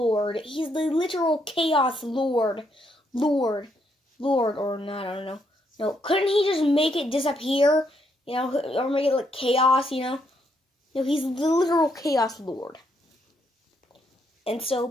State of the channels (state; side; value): normal; both; correlation 0.75